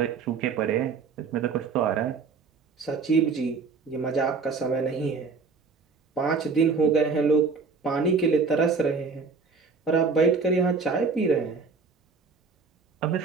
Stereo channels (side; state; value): left; quieter; 4.8 dB